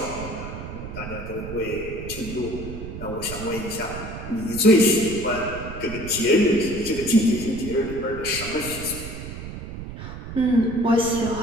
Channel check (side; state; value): right; noise; rumble, 9 dB below the sound